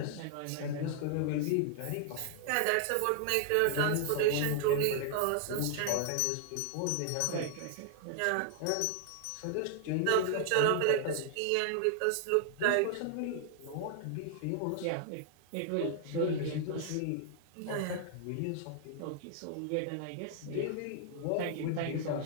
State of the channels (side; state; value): both; different; correlation -0.01